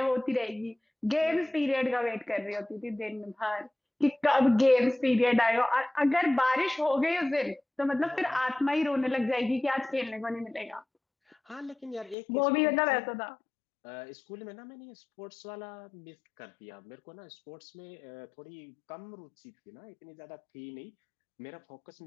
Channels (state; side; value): drops out; right; at 12.2 s